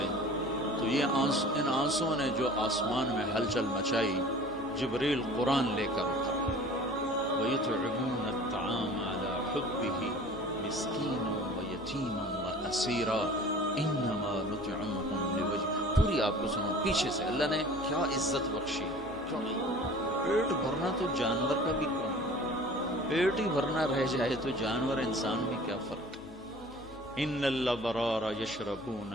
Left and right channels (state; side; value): normal; both; correlation 0.45